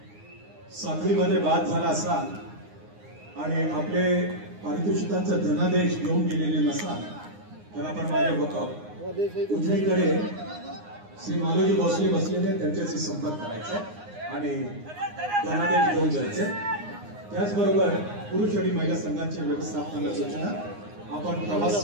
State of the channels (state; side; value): late; left; 9.7 ms